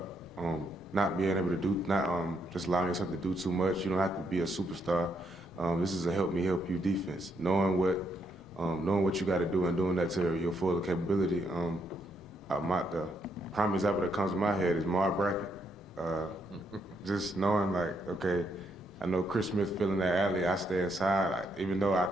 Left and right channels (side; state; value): both; normal; correlation 0.76